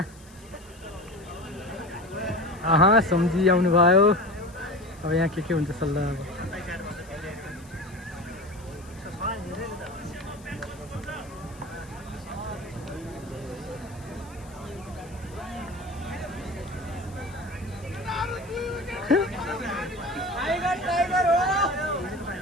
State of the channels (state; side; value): noise; left; hiss, 24 dB below the sound